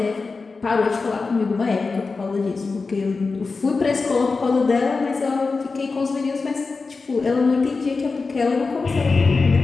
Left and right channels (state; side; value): quieter; right; 4.2 dB